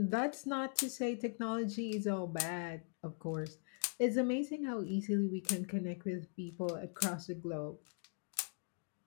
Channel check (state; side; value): silent; right; 51 dB below the other